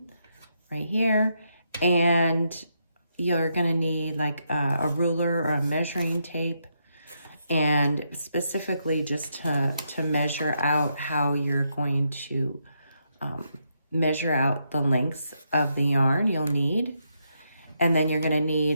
right here, and you're gonna need like a ruler or a measuring tape, and specifically just to measure out how you're going to measure out the lengths of the yarn you'll need. And then you're gonna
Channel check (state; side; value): inverted; both; correlation -0.79